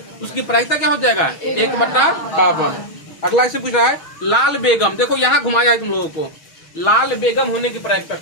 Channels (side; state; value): right; late; 6.3 ms